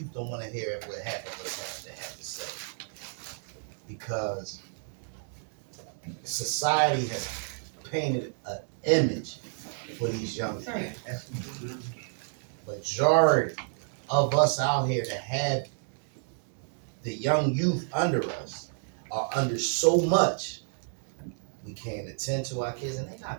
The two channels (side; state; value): left; silent; 58 dB below the other